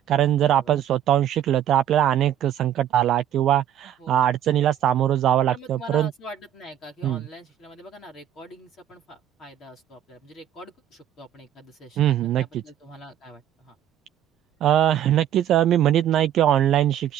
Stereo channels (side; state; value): left; quieter; 10.9 dB